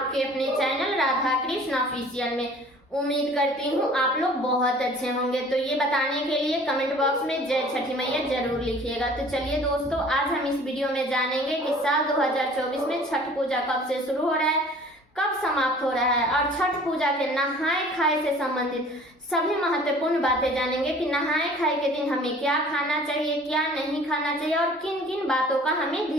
अपने चैनल राधा कृष्ण ऑफिशियल में। उम्मीद करती हूँ आप लोग बहुत अच्छे होंगे। तो ये बताने के लिए कमेंट बॉक्स में जय छठी मैया जरूर लिखिएगा। तो चलिए दोस्तों, आज हम इस वीडियो में जानेंगे कि साल 2024 में छठ पूजा कब से शुरू हो रहा है, कब समाप्त हो रहा है, और छठ पूजा के नहाए खाए से संबंधित सभी महत्वपूर्ण बातें जानेंगे कि नहाए खाए के दिन हमें क्या खाना चाहिए, क्या नहीं खाना चाहिए और किन किन बातों का हमें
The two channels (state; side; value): normal; both; correlation 0.49